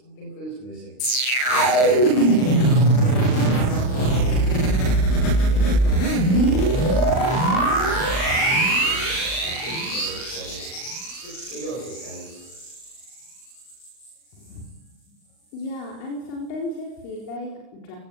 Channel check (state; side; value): late; right; 39 ms